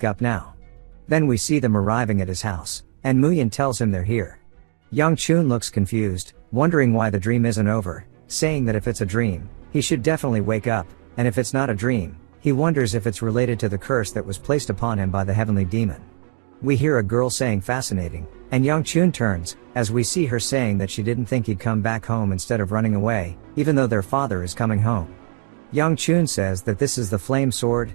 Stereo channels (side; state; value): left; silent; 65 dB below the other